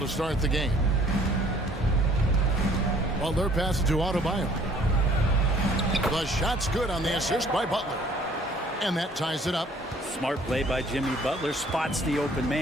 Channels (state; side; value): normal; both; correlation 0.57